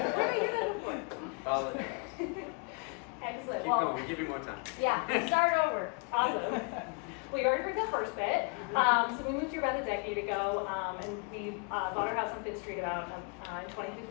Where did I hear that before? Apologize. Excellent. Keep going, we give you more time. Yeah, start over. Awesome. Well, you already heard that first bit. So we moved here about a decade ago, and we bought our house on Fifth Street about in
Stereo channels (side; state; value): right; quieter; 34.8 dB